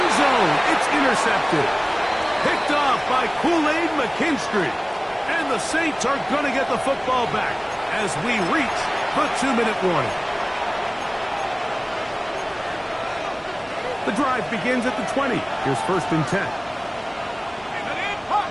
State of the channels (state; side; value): identical; both; correlation 1.00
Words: zone, it's intercepted. Picked off by Kool-Aid McKinstry. And the Saints are going to get the football back as we reach the 2-minute warning. The drive begins at the 20. Here's first and 10.